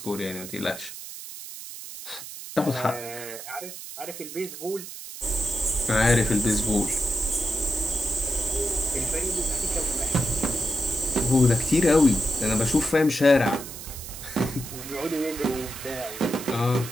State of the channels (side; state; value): right; noise; hiss, 11 dB below the sound